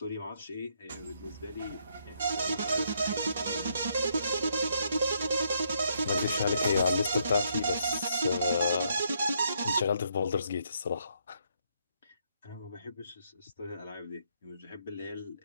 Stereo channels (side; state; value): both; inverted; correlation -0.73